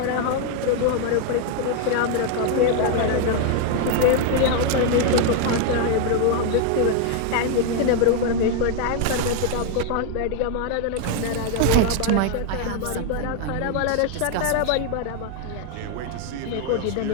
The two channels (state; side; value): different; both; correlation 0.00